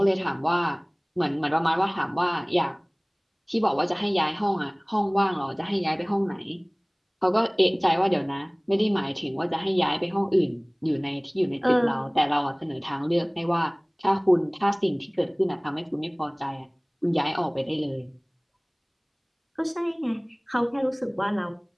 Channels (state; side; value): identical; both; correlation 1.00